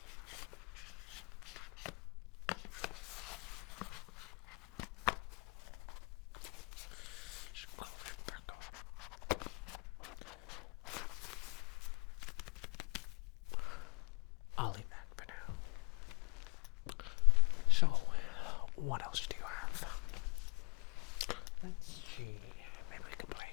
I'll leave that for now. So, what else do you have? Let's see. Maybe we can play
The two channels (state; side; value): quieter; right; 29.7 dB